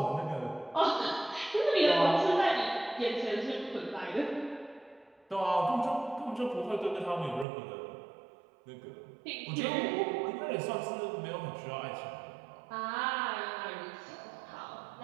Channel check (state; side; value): drops out; left; at 7.5 s